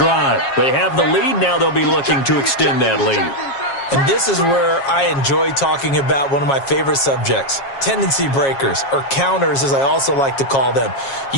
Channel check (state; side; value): late; right; 7.3 ms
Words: They have the lead. Now they'll be looking to extend that lead. And this is where I enjoy talking about one of my favorite subjects, tendency breakers, or counters as I also like to call them.